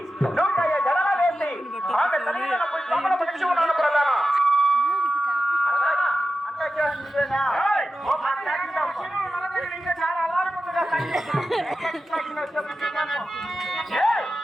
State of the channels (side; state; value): both; normal; correlation 0.92